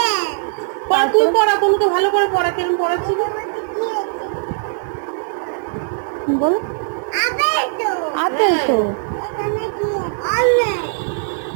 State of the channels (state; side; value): silent; left; 56 dB below the other